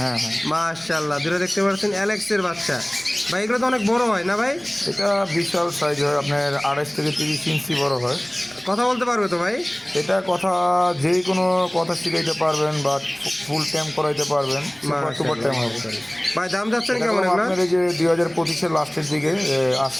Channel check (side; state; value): left; noise; hum, 29 dB below the sound